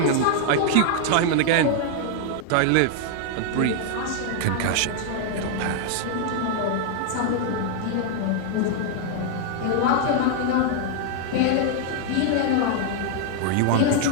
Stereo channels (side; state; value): both; different; correlation 0.00